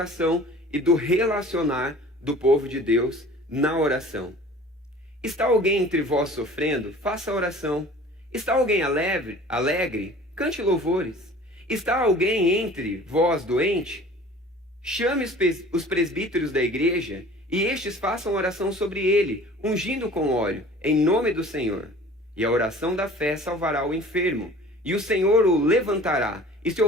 e do relacionar do povo de Deus na oração. Está alguém entre vós sofrendo? Faça oração. Está alguém alegre? Cante louvores. Está alguém entre vós doente? Chame os presbíteros da igreja e estes façam oração sobre ele, ungindo com óleo, em nome do Senhor. E a oração da fé salvará o enfermo, e o Senhor o levantará. E se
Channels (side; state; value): both; normal; correlation 0.45